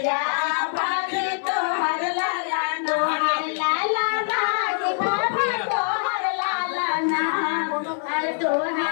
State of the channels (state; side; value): silent; right; digital silence